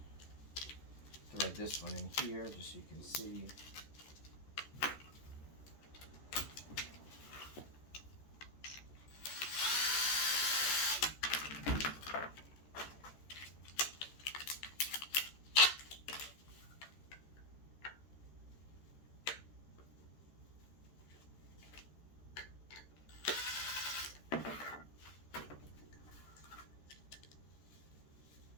thread this one in here just so you can see.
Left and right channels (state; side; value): late; right; 13 ms